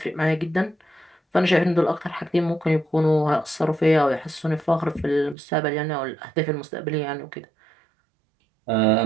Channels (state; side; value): drops out; left; at 5.4 s